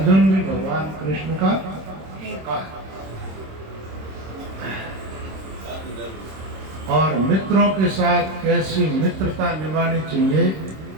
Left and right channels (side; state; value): left; late; 26 ms